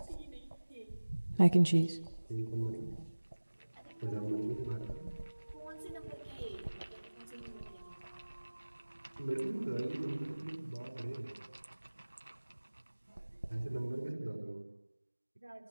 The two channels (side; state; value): both; inverted; correlation -1.00